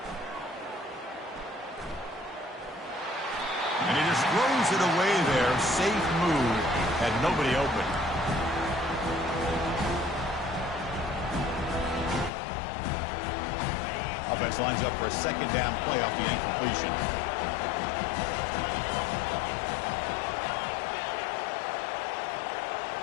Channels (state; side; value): drops out; right; at 12.3 s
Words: And he just throws it away there. Safe move. Had nobody open. Offense lines up for a second down play off the incompletion.